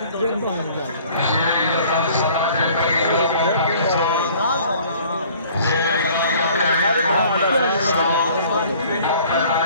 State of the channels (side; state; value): both; inverted; correlation -0.53